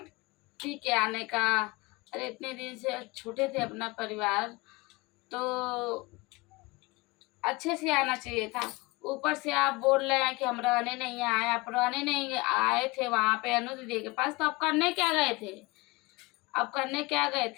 पी के आने का। अरे इतने दिन से छूटे थे अपना परिवार तो अच्छे से आना चाहिए था। ऊपर से आप बोल रहे हैं कि हम रहने नहीं आए, आप रहने नहीं आए थे वहाँ पे अनु दीदी के पास, तो आप करने क्या गए थे? आप करने क्या गए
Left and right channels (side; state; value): right; quieter; 23.9 dB